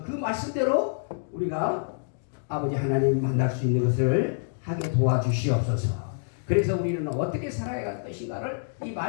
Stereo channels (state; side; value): silent; right; digital silence